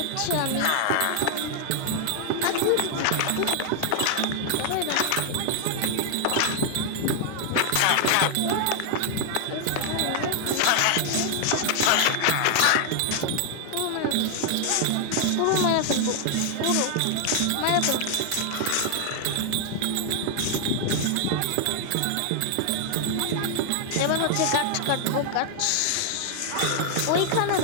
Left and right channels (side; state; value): both; different; correlation 0.00